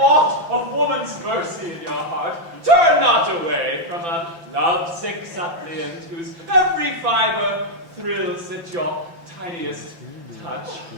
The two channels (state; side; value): late; left; 5.9 ms